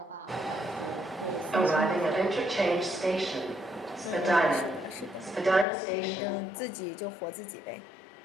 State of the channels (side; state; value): right; drops out; at 5.7 s